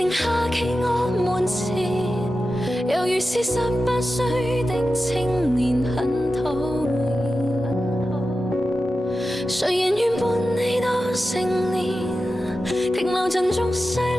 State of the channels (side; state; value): both; normal; correlation 0.92